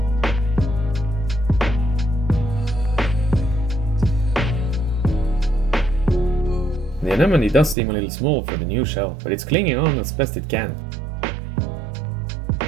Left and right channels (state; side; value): drops out; left; at 7.8 s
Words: The anemone does seem a little small for the new shell, but it's clinging on as best it can.